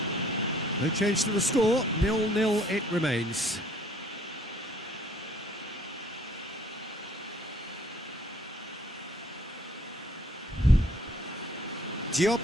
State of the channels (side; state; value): both; normal; correlation 0.61